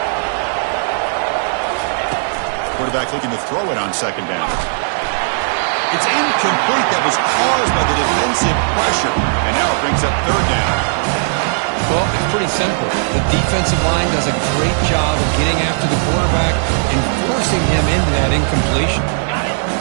Quarterback looking to throw it on 2nd down. It's incomplete. That was caused by the defensive pressure. And now it brings up 3rd down. Well, it's pretty simple. The defensive line does a great job of getting after the quarterback and forcing him into that incompletion.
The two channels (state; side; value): silent; left; digital silence